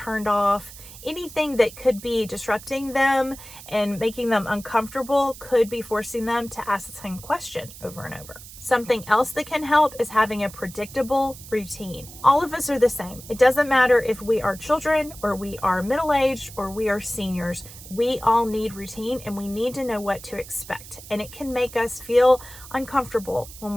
off. Anything that could be disrupting them and making them uncomfortable could be forcing them to ask the same question over and over. Something else that can help is having a predictable routine. All of us are the same. It doesn't matter if we are children or we are middle-aged or we are seniors. We all need routine and we need to know what to expect. And it can make us feel uncomfortable when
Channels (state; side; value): noise; right; hiss, 16 dB below the sound